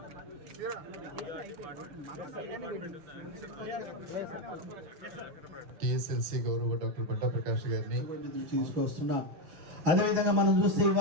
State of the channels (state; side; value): late; left; 6.1 ms